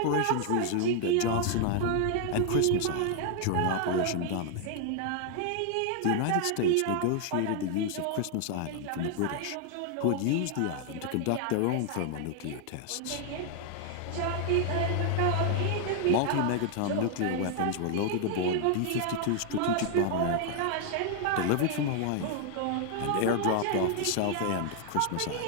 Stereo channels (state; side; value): different; both; correlation 0.00